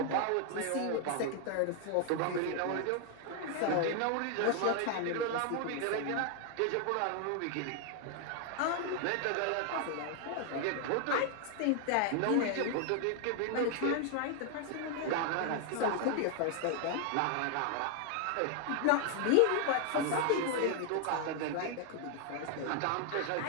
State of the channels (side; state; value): both; different; correlation 0.00